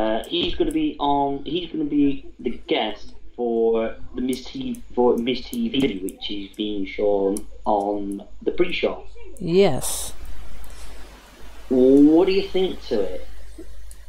He's going to be the guest for the Miz TV, which is being shown on the pre-show. Yes. What do you think to it?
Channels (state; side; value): identical; both; correlation 1.00